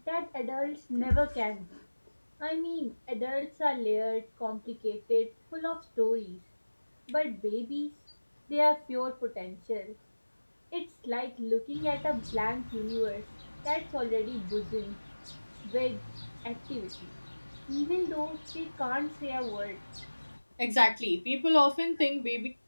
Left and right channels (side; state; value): both; inverted; correlation -1.00